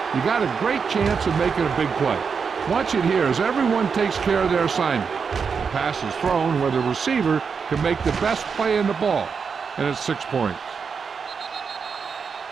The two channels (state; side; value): quieter; left; 5.9 dB